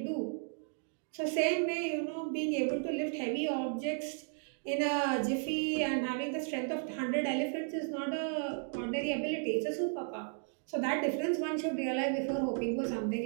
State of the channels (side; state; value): left; silent; 55 dB below the other